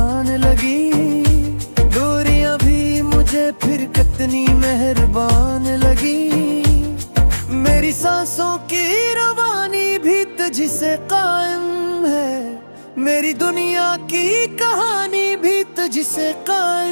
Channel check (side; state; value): both; inverted; correlation -1.00